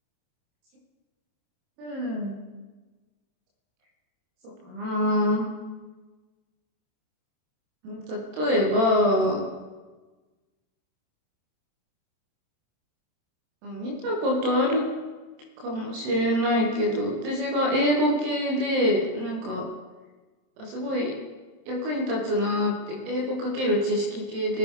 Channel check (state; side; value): late; left; 27 ms